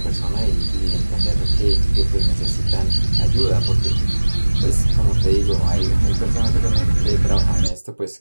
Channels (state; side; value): inverted; both; correlation -1.00